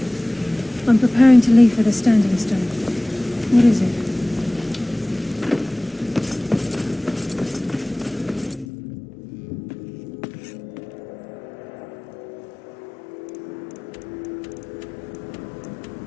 I'm preparing to leave for the standing stone. What is it?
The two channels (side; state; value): right; drops out; at 8.7 s